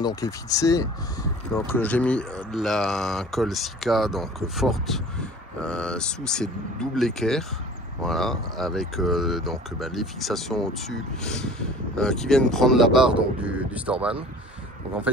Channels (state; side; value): normal; both; correlation 0.45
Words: est fixé. Donc j'ai mis de la colle Sika donc forte sous ces doubles équerres. Voilà, avec les fixations au-dessus qui viennent prendre la barre donc, du Storban. Donc en fait